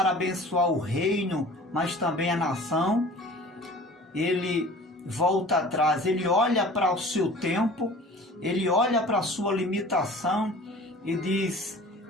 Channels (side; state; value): both; normal; correlation 0.44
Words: abençoar o reino, mas também a nação, ele volta atrás, ele olha para o seu tempo, ele olha para a sua limitação e diz: